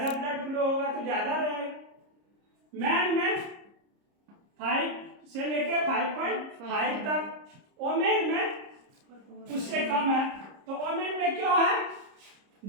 ब्लड फ्लो होगा तो ज्यादा रहेगा। मैन में 5 से लेके 5.5 तक, वोमेन में उससे कम है। तो वोमेन में क्यों है,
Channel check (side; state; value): left; late; 30 ms